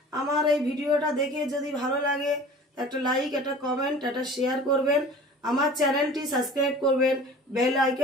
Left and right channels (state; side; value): normal; both; correlation 0.43